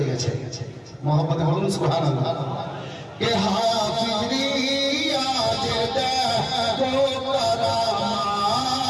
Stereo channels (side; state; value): both; identical; correlation 1.00